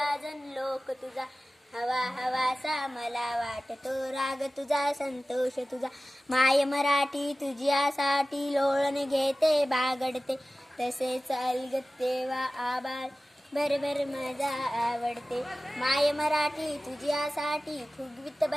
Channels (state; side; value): normal; both; correlation 0.96